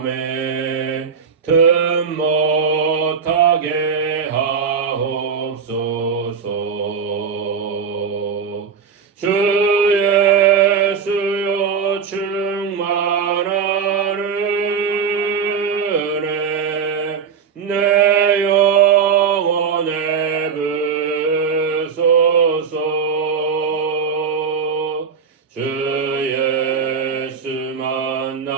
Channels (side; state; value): left; quieter; 6.3 dB